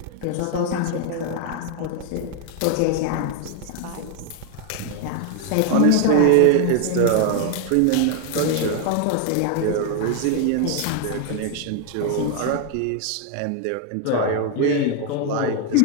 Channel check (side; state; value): both; different; correlation 0.00